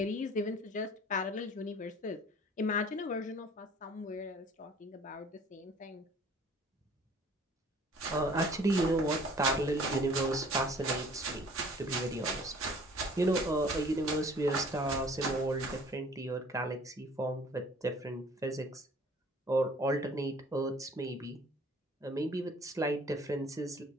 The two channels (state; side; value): normal; both; correlation 0.52